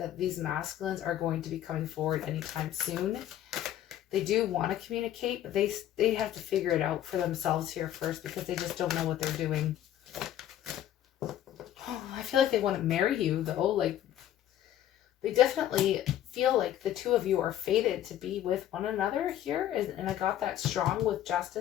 these masculines are going to be coming forward anytime soon. They do want to communicate, but they have to figure it out for themselves here first, because they just don't know what they're doing. Oh, I feel like they want to marry you, though. Like, they definitely feel like the two of you are fated to be with one another here. And I got that strong with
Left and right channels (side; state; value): right; quieter; 11.8 dB